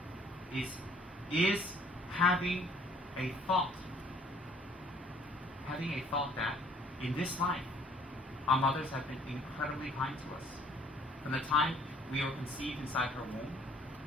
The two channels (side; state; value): both; normal; correlation 0.59